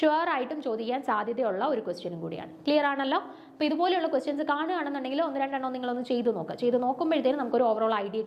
ആയിട്ടും ചോദിക്കാൻ സാധ്യതയുള്ള ഒരു ക്വസ്റ്റ്യനും കൂടിയാണ്. ക്ലിയർ ആണല്ലോ? അപ്പോൾ ഇതുപോലെയുള്ള ക്വസ്റ്റ്യൻസ് കാണുകയാണെന്നുണ്ടെങ്കിൽ 1-2 നിങ്ങളൊന്ന് ചെയ്ത് നോക്കുക. ചെയ്ത് നോക്കുമ്പോഴത്തേനും നമുക്കൊരു ഓവറോൾ ഐഡിയ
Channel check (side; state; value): both; identical; correlation 1.00